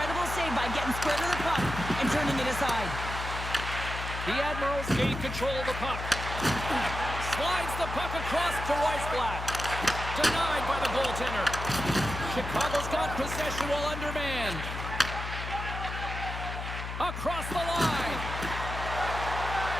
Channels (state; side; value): noise; left; hum, 6 dB below the sound